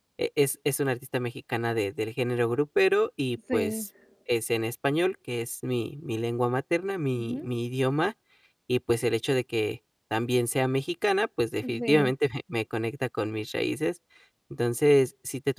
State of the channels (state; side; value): identical; both; correlation 1.00